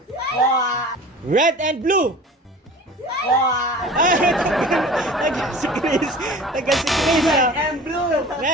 Red and blue. Tanggal si Chris. And blue.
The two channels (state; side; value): normal; both; correlation 0.41